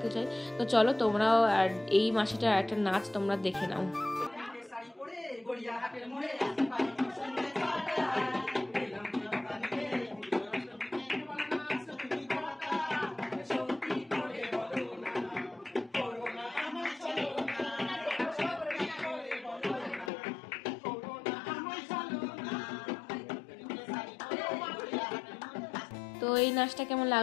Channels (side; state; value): right; drops out; at 20.1 s